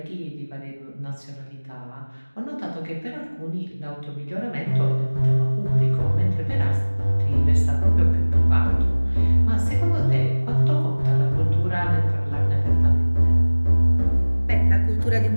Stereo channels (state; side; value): inverted; both; correlation -1.00